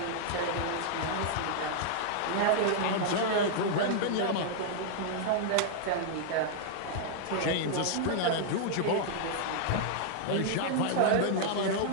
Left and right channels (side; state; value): both; different; correlation -0.01